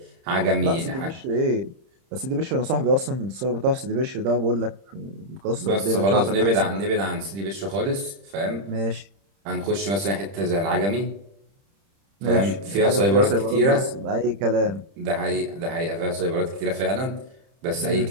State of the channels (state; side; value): late; left; 30 ms